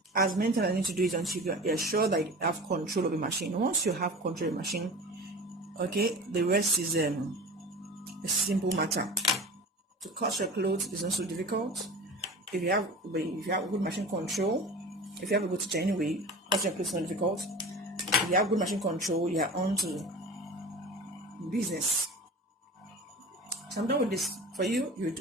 as many times I need to do it until you're sure that you have control of the machine. Once you have control of the machine, okay, the rest is a simple matter. To cut your clothes is not so difficult. If you have good machine control, if you have a good teacher anyway, cutting your clothes is not difficult. If you have good machine control, you are on to business. So I'm done with this. For you, you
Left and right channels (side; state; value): both; normal; correlation 0.36